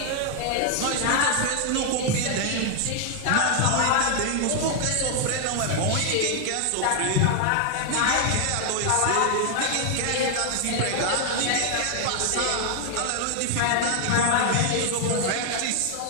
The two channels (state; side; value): different; both; correlation 0.00